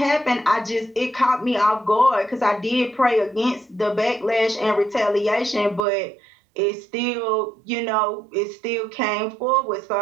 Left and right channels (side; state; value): left; drops out; at 5.8 s